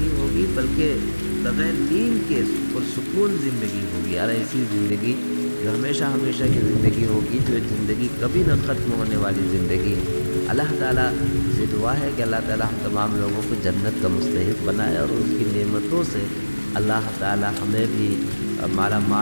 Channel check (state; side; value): inverted; both; correlation -1.00